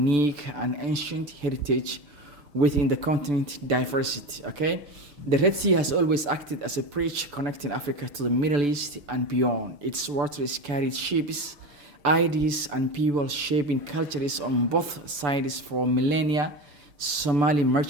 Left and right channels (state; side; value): late; left; 6.9 ms